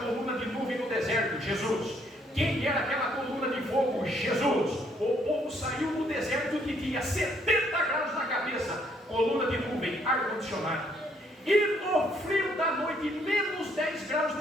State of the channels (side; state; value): both; normal; correlation 0.68